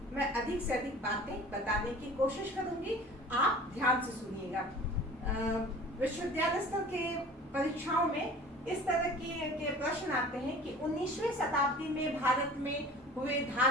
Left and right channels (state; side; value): normal; both; correlation 0.44